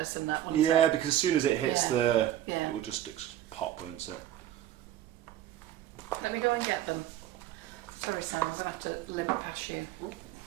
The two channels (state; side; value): quieter; left; 12.4 dB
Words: in that one. Yeah, because as soon as it hits Yeah. it will just pop, won't it? Let me go and get them. Sorry, Sam, I'm going to have to limp past you.